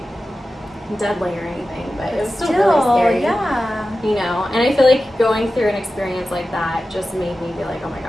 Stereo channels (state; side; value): normal; both; correlation 0.94